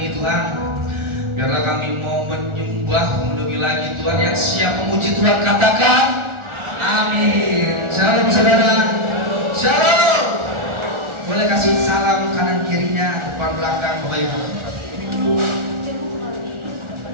Tuhan, biarlah kami mau menyembah lebih lagi Tuhan. Yang siap memuji Tuhan katakan amin. Shalom saudara, shalom. Boleh kasih salam kanan kirinya, depan belakang Bapak Ibu.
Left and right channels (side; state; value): left; late; 1.4 ms